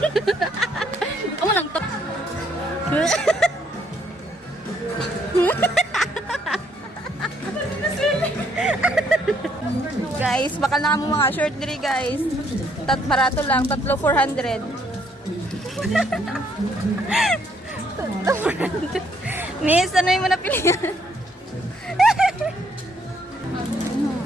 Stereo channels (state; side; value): normal; both; correlation 0.69